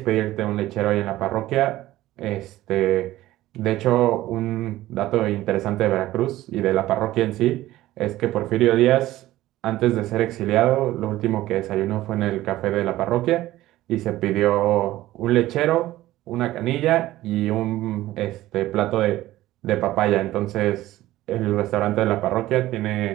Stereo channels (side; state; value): left; quieter; 15.7 dB